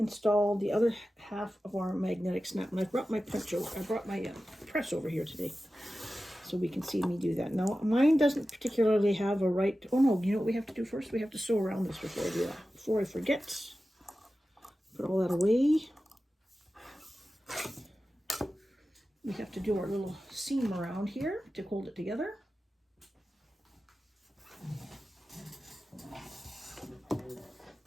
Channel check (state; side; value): normal; both; correlation 0.94